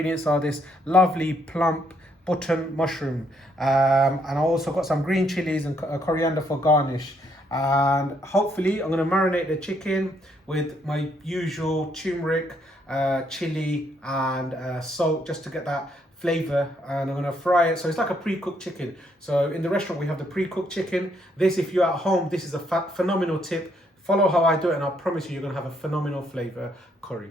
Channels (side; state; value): both; normal; correlation 0.72